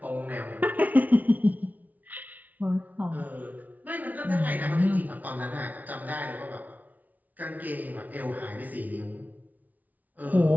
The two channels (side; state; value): left; late; 0.077 ms